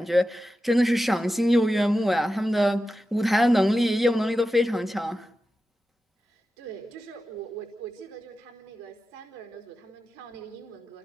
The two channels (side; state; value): both; normal; correlation 0.92